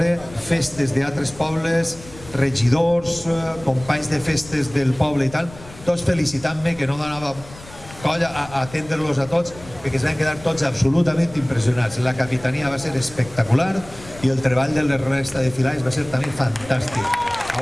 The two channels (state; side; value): noise; left; rumble, 18 dB below the sound